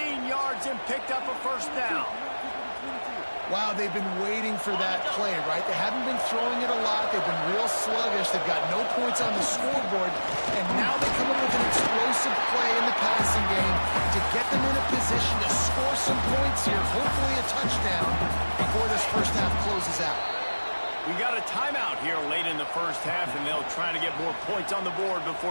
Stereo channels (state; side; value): inverted; both; correlation -1.00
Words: yards and picked up a first down. Wow, they've been waiting for that play, right? They haven't been throwing it a lot. They've been real sluggish. They've got no points on the scoreboard, and now they come up with an explosive play in the passing game to get them in a position to score some points here, hopefully a touchdown before this first half closes out. We got a timeout here late in the first half, and they'll try to get more points on the board